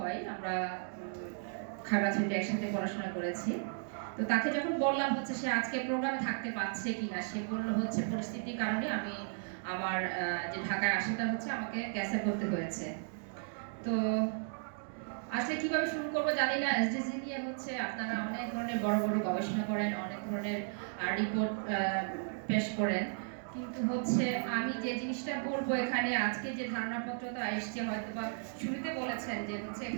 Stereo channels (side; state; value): left; silent; digital silence